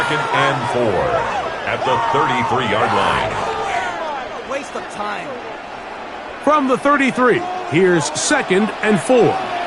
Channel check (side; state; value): both; identical; correlation 1.00